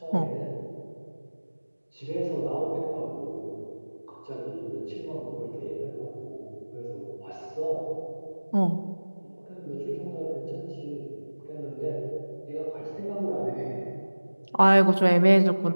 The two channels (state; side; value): inverted; both; correlation -1.00